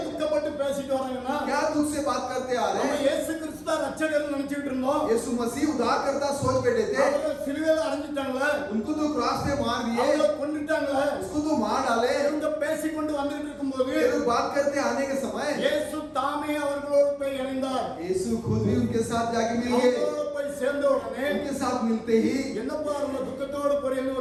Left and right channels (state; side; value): identical; both; correlation 1.00